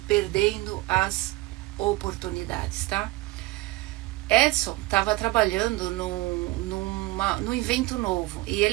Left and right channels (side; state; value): left; quieter; 20.1 dB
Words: perdendo as oportunidades, tá? Edison estava trabalhando num evento novo e